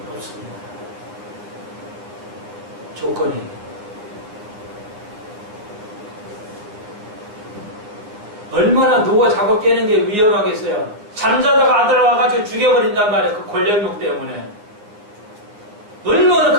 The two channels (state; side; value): late; left; 9.5 ms